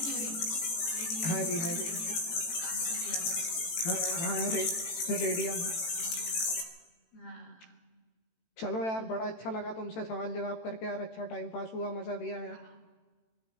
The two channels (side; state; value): right; late; 18 ms